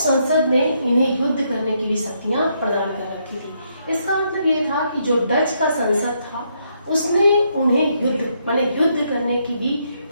ने इन्हें युद्ध करने की भी शक्तियां प्रदान कर रखी थी। इसका मतलब ये था कि जो डच का संसद था उसने उन्हें युद्ध करने की भी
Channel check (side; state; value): both; inverted; correlation -0.76